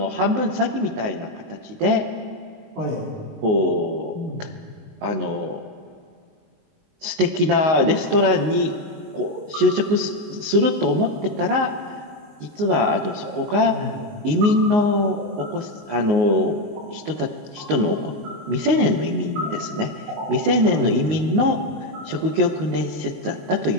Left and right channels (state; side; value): late; left; 19 ms